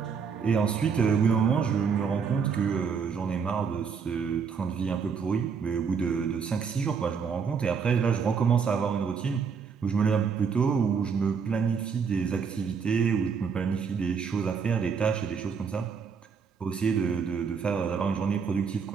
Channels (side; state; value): left; quieter; 6.1 dB